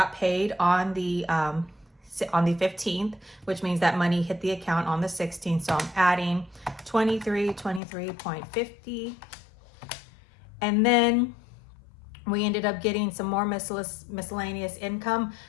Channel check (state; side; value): drops out; right; at 7.8 s